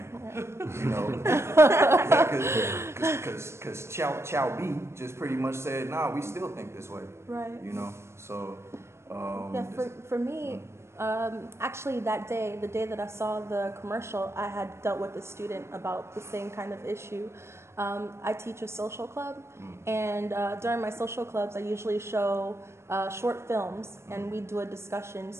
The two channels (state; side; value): late; left; 0.13 ms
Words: you know? Because Qiaobi just pretty much said, nah, we still think this way, right? You know, so. For me, actually that day, the day that I saw the commercial, I had dealt with a student about the same kind of issue. I teach a social club, and during my social clubs, I usually show short films, and we do a discussion.